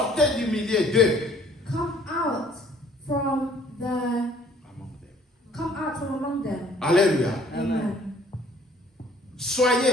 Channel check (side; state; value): both; normal; correlation 0.57